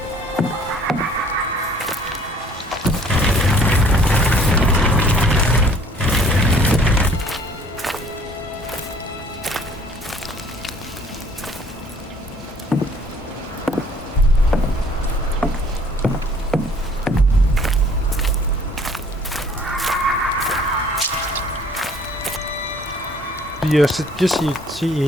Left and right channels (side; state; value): both; normal; correlation 0.56